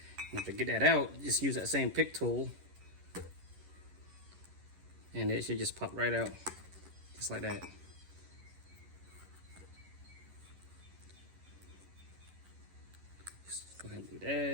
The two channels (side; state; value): left; late; 11 ms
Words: And to get that out, just use that same pick tool, and it should just pop right out, just like that. Just go ahead and do